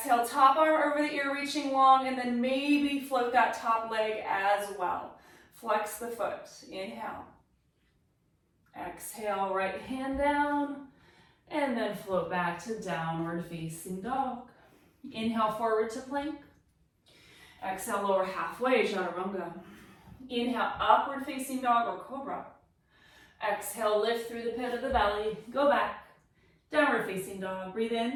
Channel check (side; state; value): both; identical; correlation 1.00